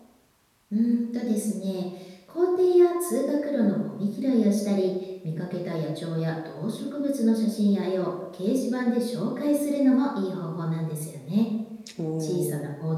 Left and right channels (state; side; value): identical; both; correlation 1.00